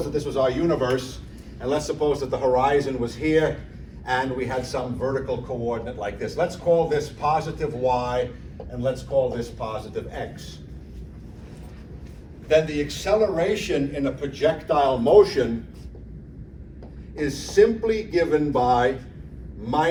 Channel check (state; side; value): identical; both; correlation 1.00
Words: that this was our universe, and let's suppose that the horizon was here, and we had some vertical coordinate like this. Let's call this positive y, and let's call this positive x. Then the acceleration in a projectile motion is simply given by